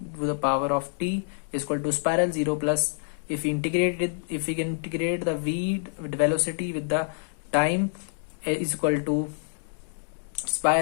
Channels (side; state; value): right; silent; digital silence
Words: to the power of t is equal to spiral 0 plus, if we integrate it, if we can integrate the v velocity with the time, is equal to